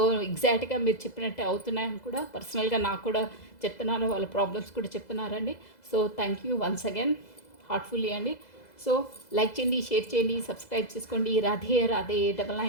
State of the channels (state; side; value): late; right; 2.0 ms